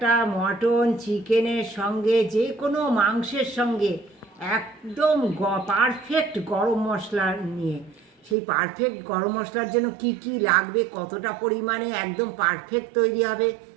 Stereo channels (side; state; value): left; drops out; at 8.3 s